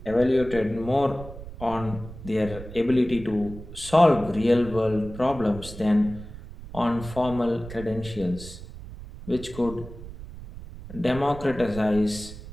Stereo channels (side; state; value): right; noise; rumble, 13 dB below the sound